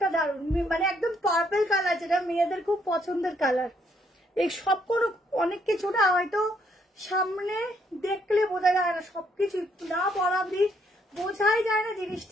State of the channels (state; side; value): normal; both; correlation 0.71